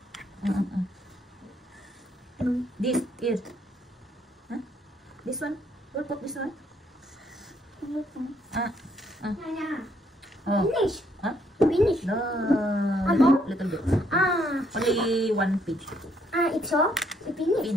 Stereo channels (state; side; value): normal; both; correlation 0.70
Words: This is. This one. We'll put this one. Finish. Finish. No. Little bit. Only one page. It's all. Finish.